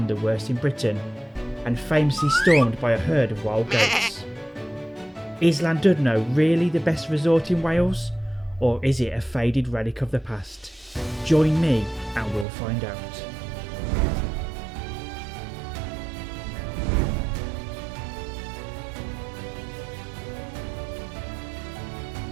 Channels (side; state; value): left; drops out; at 12.5 s